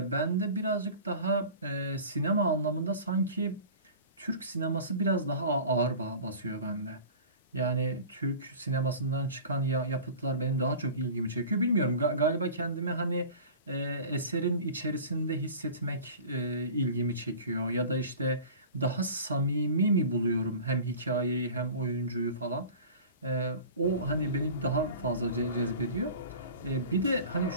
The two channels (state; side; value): inverted; both; correlation -0.39